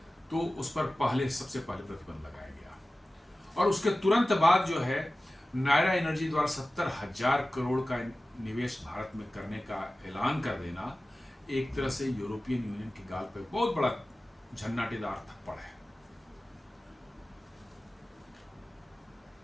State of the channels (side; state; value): both; normal; correlation 0.96